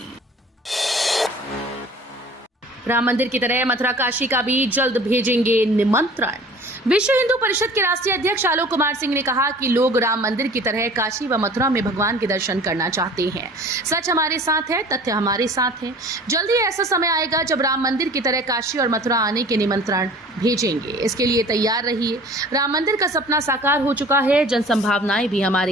राम मंदिर की तरह मथुरा काशी का भी जल्द भेजेंगे निमंत्रण। विश्व हिंदू परिषद के राष्ट्रीय अध्यक्ष आलोक कुमार सिंह ने कहा कि लोग राम मंदिर की तरह काशी व मथुरा में भगवान के दर्शन करना चाहते हैं। सच हमारे साथ है, तथ्य हमारे साथ है। जल्दी ऐसा समय आएगा जब राम मंदिर की तरह काशी और मथुरा आने के निमंत्रण भेजेंगे। इसके लिए तैयार रहिए। राम मंदिर का सपना साकार हो चुका है, जन संभावनाएं भी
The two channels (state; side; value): normal; both; correlation 0.45